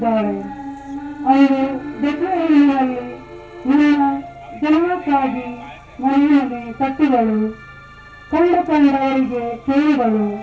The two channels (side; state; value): both; identical; correlation 1.00